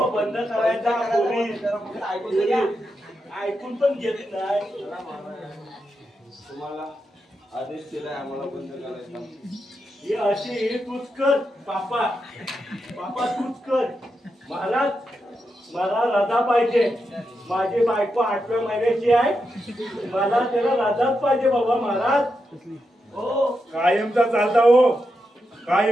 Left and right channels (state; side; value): normal; both; correlation 0.86